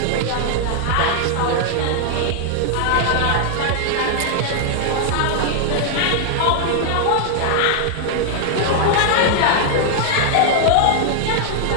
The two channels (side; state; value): both; different; correlation -0.01